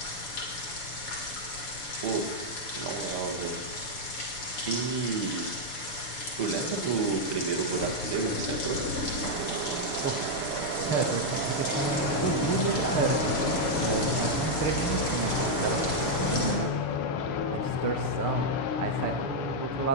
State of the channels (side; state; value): right; late; 6.9 ms